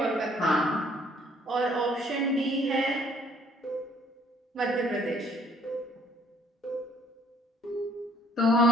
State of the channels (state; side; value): normal; both; correlation 0.61